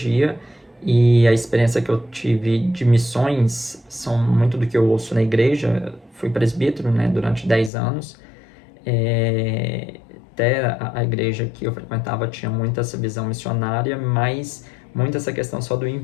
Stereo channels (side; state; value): right; drops out; at 7.7 s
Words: e a experiência que eu tive de missões são muito do que eu ouço na igreja. Fui presbítero, né, durante 10 anos. Até a igreja que eu frequentava tinha muito essa visão missionária, mas muito essa questão só do